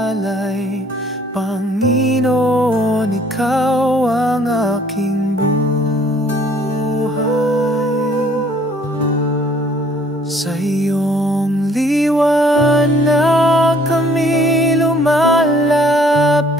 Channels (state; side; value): normal; both; correlation 0.59